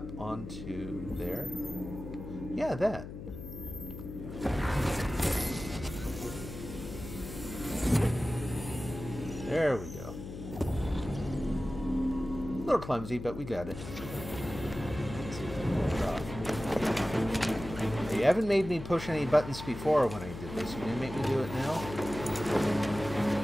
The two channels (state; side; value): noise; left; hum, 10 dB below the sound